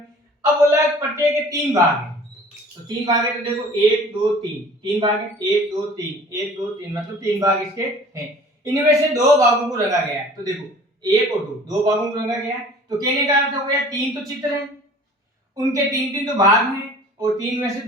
अब बोला है प्रत्येक के 3 भाग हैं, तो 3 भाग है, तो देखो 1 2 3 3 भाग है, 1 2 3 1 2 3 मतलब 3 भाग इसके हैं। इनमें से दो भागों को रंगा गया है। तो देखो 1 और 2 भागों को रंगा गया है। तो कहने का अर्थ हो गया 3 तो चित्र हैं, उनके 3 तो भाग हैं और 3 में से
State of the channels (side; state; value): both; normal; correlation 0.47